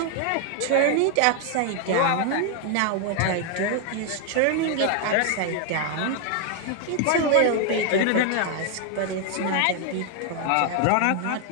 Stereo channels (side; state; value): both; different; correlation 0.00